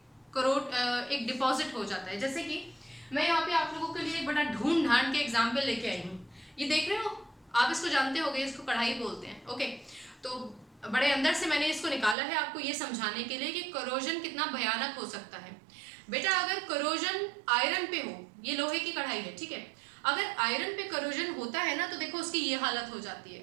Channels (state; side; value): drops out; left; at 12.2 s